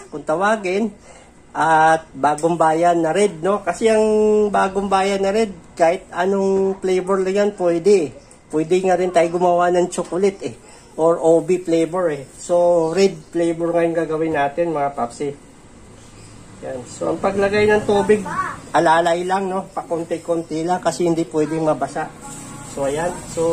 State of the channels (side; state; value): both; identical; correlation 1.00